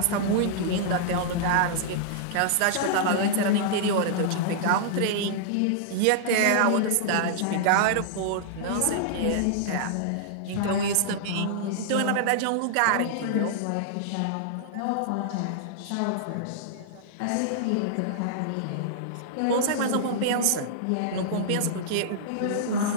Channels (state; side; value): different; both; correlation -0.01